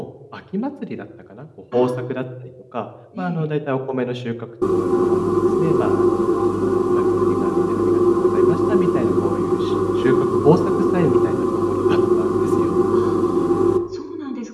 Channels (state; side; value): identical; both; correlation 1.00